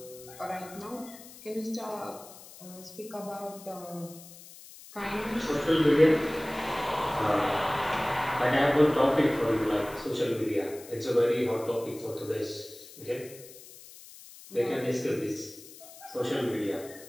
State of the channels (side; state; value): left; noise; hiss, 18 dB below the sound